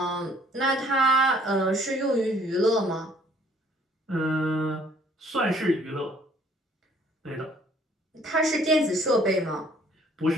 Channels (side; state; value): both; normal; correlation 0.59